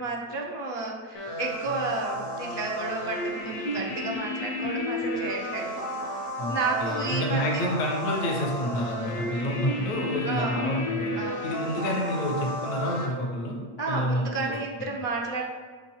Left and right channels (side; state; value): right; late; 8.7 ms